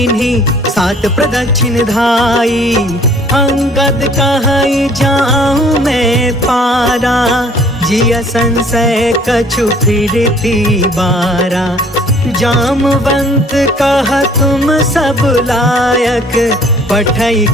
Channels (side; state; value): both; normal; correlation 0.56